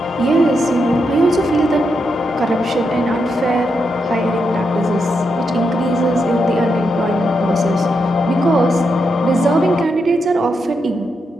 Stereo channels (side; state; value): both; normal; correlation 0.83